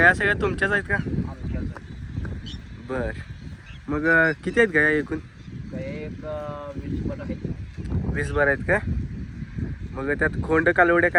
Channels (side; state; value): both; identical; correlation 1.00